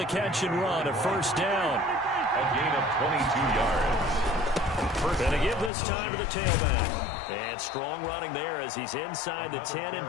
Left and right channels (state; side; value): drops out; right; at 5.7 s